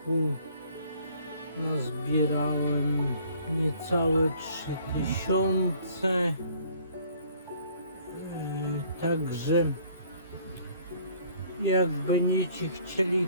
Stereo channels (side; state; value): both; inverted; correlation -0.59